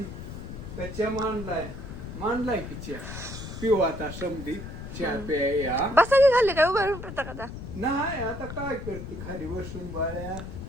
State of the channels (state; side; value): noise; left; rumble, 9 dB below the sound